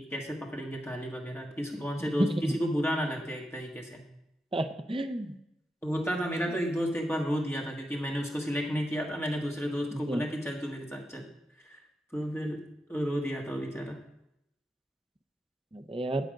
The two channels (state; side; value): normal; both; correlation 0.87